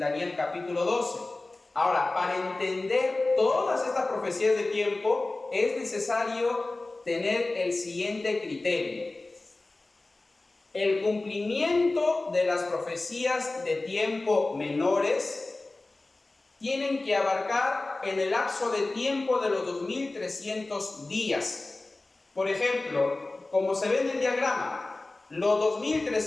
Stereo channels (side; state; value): right; quieter; 3.1 dB